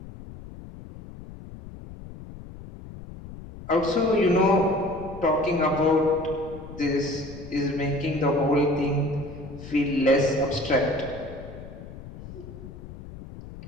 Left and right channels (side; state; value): left; noise; rumble, 14 dB below the sound